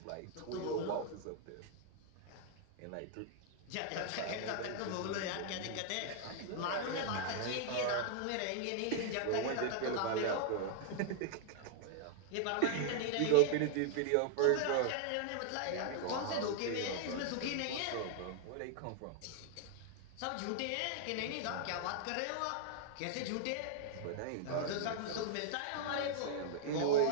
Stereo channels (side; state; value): both; different; correlation -0.01